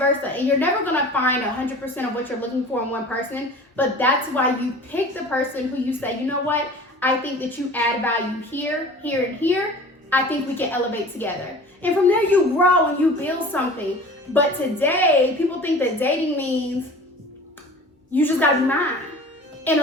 and you're never gonna find 100% of what you're looking for in one person, but that's why you pick the person who you say, you know what, I think that you add value here, here, and here. I think we can elevate together. And from there you grow and you build something. But today, people think that dating means you just gotta be mine. And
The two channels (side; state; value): both; normal; correlation 0.42